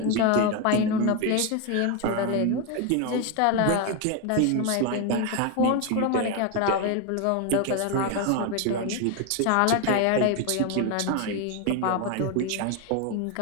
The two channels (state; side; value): different; both; correlation 0.02